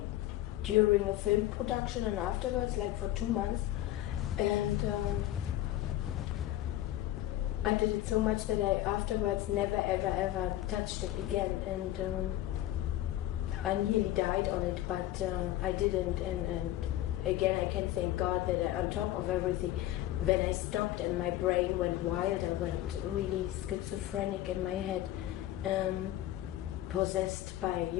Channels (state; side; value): quieter; right; 14.5 dB